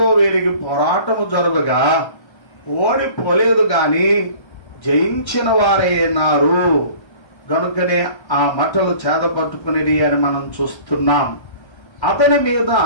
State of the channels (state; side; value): late; right; 1.3 ms